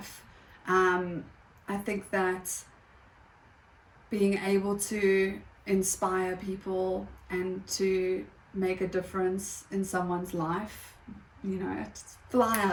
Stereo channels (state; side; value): identical; both; correlation 1.00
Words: I think that being able to inspire people and to make a difference in someone's life, you know, fly